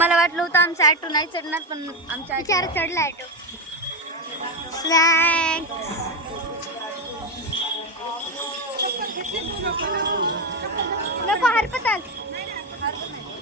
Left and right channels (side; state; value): both; normal; correlation 0.11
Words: वाटलं होतं आमचा ऑटो नाही चढणार, पण आमच्या विचार चढला ऑटो. स्नॅक्स नको हरपताल